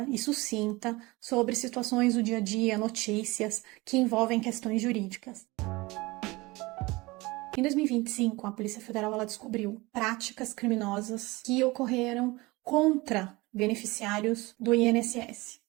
e sucinta sobre situações do dia a dia, notícias que envolvem questões jurídicas. Em 2025, a Polícia Federal ela descobriu práticas criminosas que ocorreram contra beneficiários do INSS.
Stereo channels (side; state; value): left; quieter; 22.5 dB